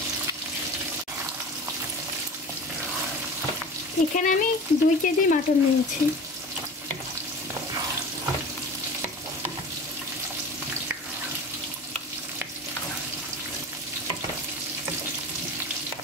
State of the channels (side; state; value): both; normal; correlation 0.36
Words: এখানে আমি 2 কেজি মাটন নিয়েছি।